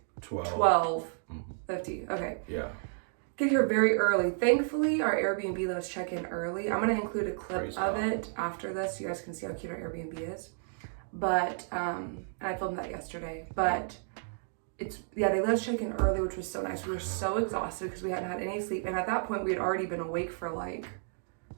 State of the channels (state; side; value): silent; left; digital silence